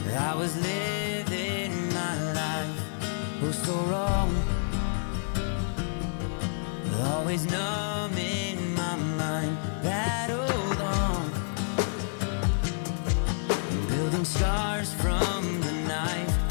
I was living my life, oh so wrong. Always numb in my mind, battled on, building scars from the knife,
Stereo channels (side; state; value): right; silent; digital silence